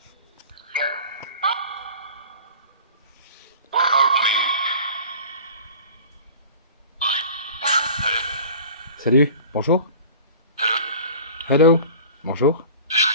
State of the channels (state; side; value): inverted; both; correlation -0.42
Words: Salut, bonjour. Hello, bonjour.